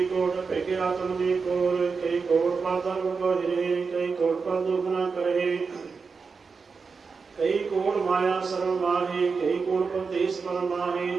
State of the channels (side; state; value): left; quieter; 5.0 dB